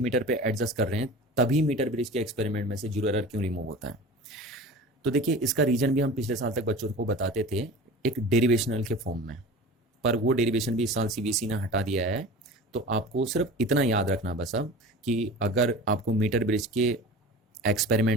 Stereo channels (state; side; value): normal; both; correlation 0.36